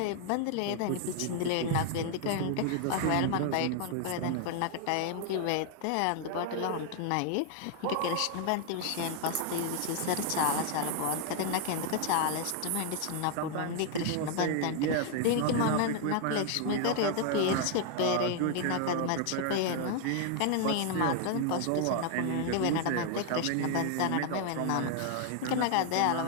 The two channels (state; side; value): different; both; correlation 0.00